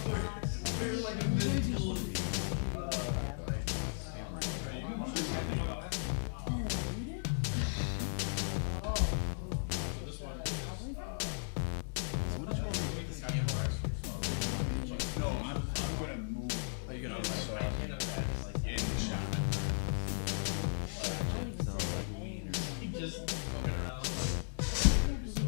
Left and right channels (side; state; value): right; silent; digital silence